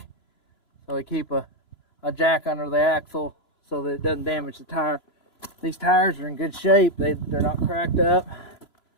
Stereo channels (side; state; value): right; late; 3.0 ms